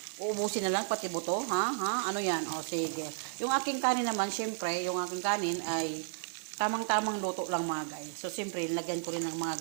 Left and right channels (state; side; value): silent; left; digital silence